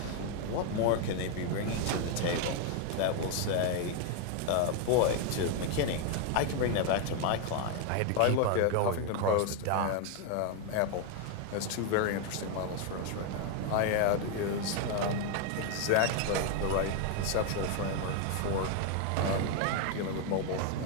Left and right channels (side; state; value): both; different; correlation 0.01